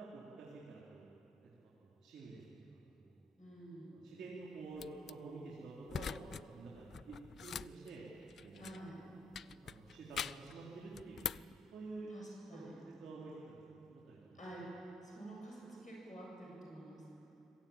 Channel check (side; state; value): both; normal; correlation 0.72